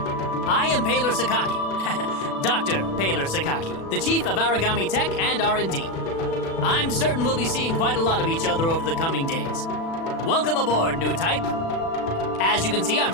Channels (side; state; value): right; late; 36 ms